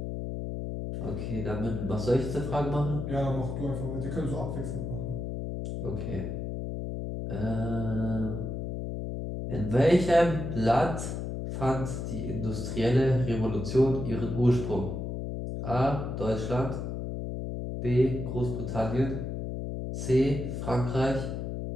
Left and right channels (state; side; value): noise; left; hum, 4 dB below the sound